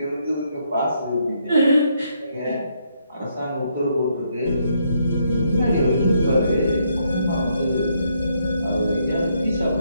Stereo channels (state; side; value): inverted; both; correlation -0.74